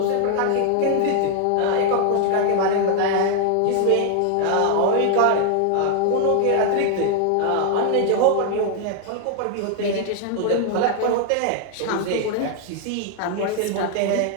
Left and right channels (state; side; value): different; both; correlation 0.00